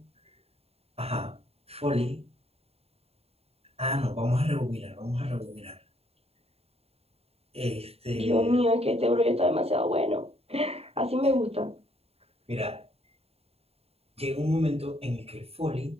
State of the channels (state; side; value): late; left; 0.29 ms